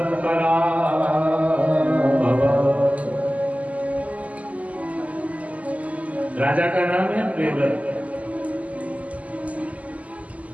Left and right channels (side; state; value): left; late; 0.071 ms